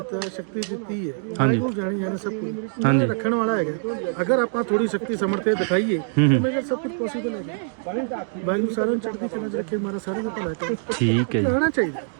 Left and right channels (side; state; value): left; silent; digital silence